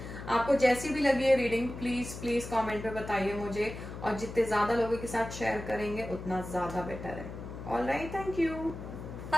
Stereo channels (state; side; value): noise; left; hum, 10 dB below the sound